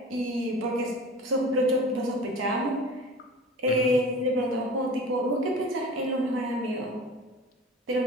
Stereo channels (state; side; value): normal; both; correlation 0.39